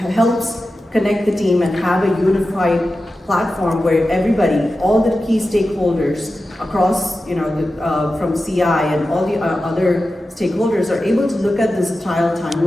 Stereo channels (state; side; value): normal; both; correlation 0.93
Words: helps connect the team and have a unified platform where everybody, all the key stakeholders across, from CI and all the other stakeholders are able to look at this trial